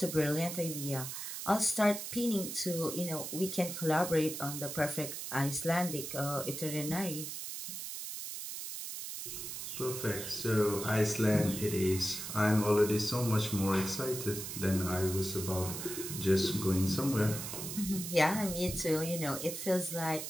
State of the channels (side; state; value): right; noise; hiss, 7 dB below the sound